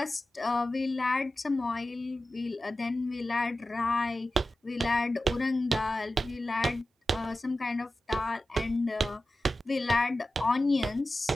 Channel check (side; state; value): both; normal; correlation 0.94